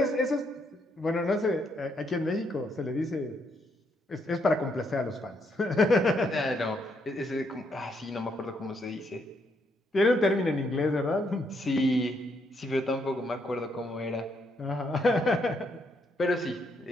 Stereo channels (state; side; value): normal; both; correlation 0.75